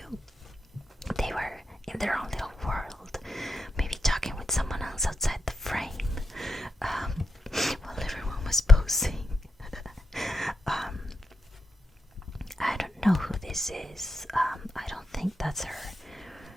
They were in their own little world, maybe talking with someone else outside the frame, while everyone was posing. I don't know who this is. I don't think that's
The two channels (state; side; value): normal; both; correlation 0.86